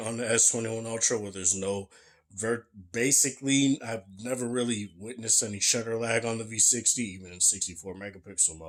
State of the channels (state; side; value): identical; both; correlation 1.00